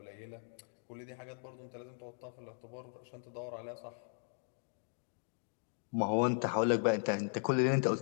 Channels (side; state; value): right; silent; 52 dB below the other